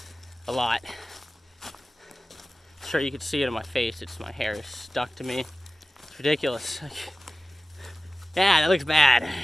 a lot. Sure, you could see it on my face. It's my hair is stuck to me. It's ridiculous. Yeah, that looks bad.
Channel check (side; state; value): both; normal; correlation 0.96